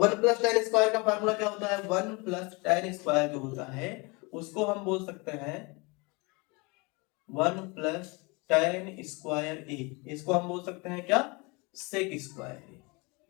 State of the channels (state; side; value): quieter; right; 27.8 dB